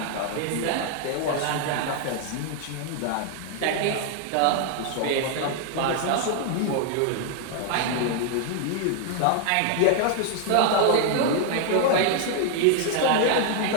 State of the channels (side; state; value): both; different; correlation 0.00